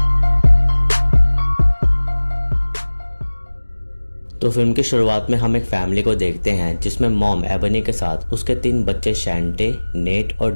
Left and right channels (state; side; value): inverted; both; correlation -1.00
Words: तो फिल्म की शुरुआत में हम एक फैमिली को देखते हैं जिसमें मॉम एबनी के साथ उसके 3 बच्चे शैंटे, नेट और